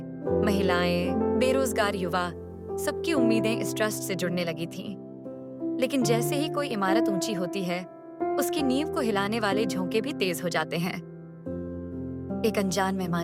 महिलाएं, बेरोजगार युवा, सबकी उम्मीदें इस ट्रस्ट से जुड़ने लगी थीं। लेकिन जैसे ही कोई इमारत ऊंची होती है, उसकी नींव को हिलाने वाले झोंके भी तेज हो जाते हैं। एक अनजान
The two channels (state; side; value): identical; both; correlation 1.00